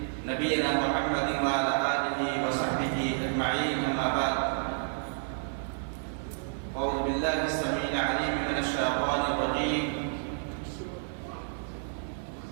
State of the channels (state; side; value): silent; left; digital silence